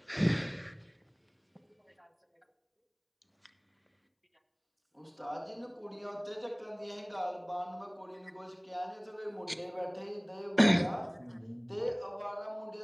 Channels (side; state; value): both; identical; correlation 1.00